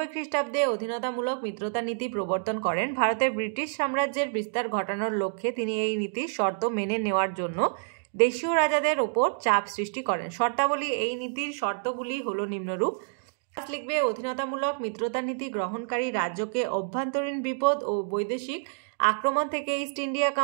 খ্রিস্টাব্দে অধীনতামূলক মিত্রতা নীতি প্রবর্তন করেন। ভারতের ব্রিটিশ সাম্রাজ্যের বিস্তার ঘটানোর লক্ষ্যে তিনি এই নীতির শর্ত মেনে নেওয়ার জন্য দেশীয় রাজাদের ওপর চাপ সৃষ্টি করেন। শর্তাবলী। এই নীতির শর্তগুলি হল নিম্নরূপ। লিখবে অধীনতামূলক মিত্রতা নীতি গ্রহণকারী রাজ্যকে অভ্যন্তরীণ বিপদ ও বৈদেশিক আক্রমণ থেকে ইস্ট ইন্ডিয়া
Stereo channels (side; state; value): left; silent; digital silence